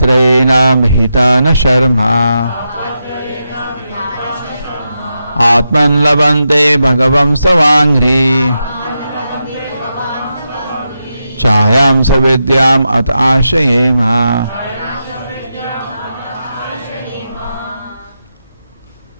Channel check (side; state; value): both; inverted; correlation -0.87